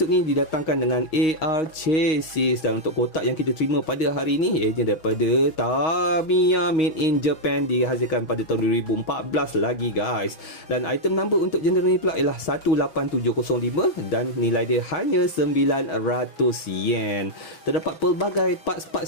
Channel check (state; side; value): late; right; 6.3 ms